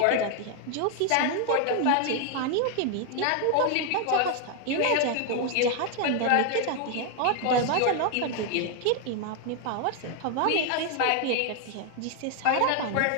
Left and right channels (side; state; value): both; different; correlation 0.00